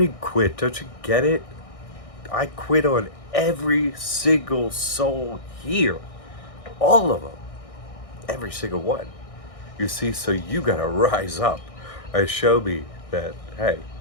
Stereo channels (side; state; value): right; late; 1.6 ms